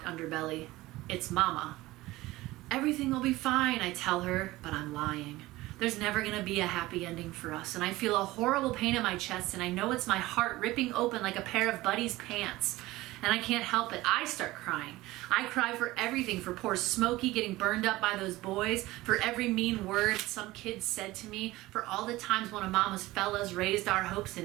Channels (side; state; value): left; quieter; 18.5 dB